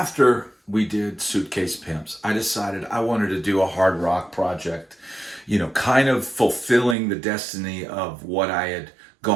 we did Suitcase Pimps, I decided I wanted to do a hard rock project, kind of fulfilling the destiny of what I had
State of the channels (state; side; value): drops out; left; at 7.0 s